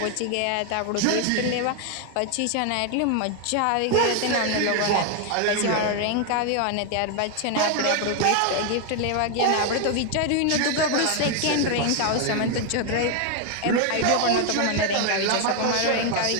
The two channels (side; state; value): both; different; correlation 0.01